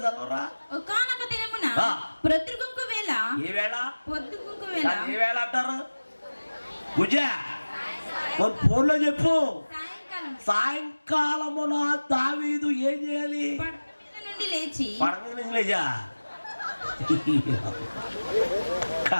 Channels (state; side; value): inverted; both; correlation -1.00